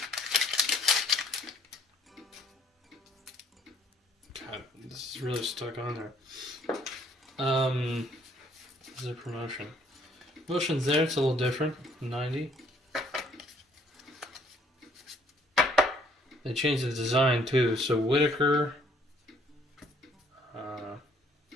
God, this is really stuck on there. This is a promotion. Promotion's there, it's a little different. 90. They changed the design too. So Whitaker,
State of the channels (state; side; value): normal; both; correlation 0.62